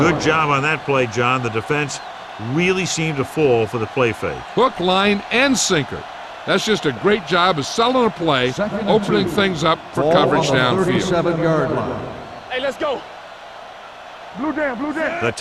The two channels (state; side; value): identical; both; correlation 1.00